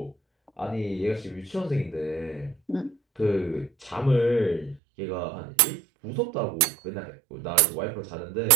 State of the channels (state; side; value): drops out; left; at 4.8 s